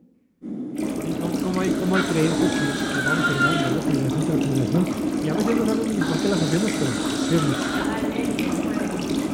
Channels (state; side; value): identical; both; correlation 1.00